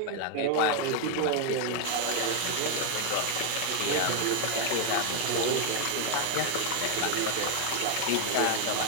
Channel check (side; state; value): both; different; correlation 0.01